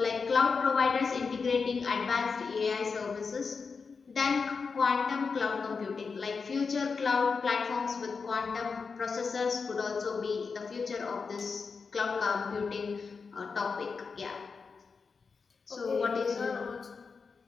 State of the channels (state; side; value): quieter; right; 5.1 dB